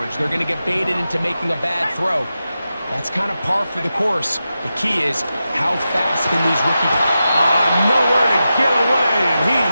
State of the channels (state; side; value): inverted; both; correlation -0.91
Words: They're going to get baited into making a bad throw. That's kind of par for the course. The key is how fast can these rookie... Nowhere to get away, and